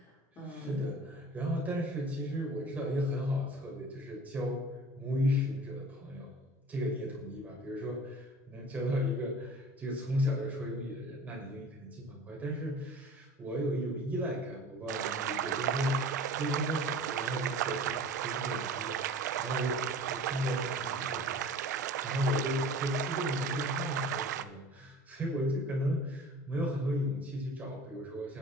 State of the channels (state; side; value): normal; both; correlation 0.42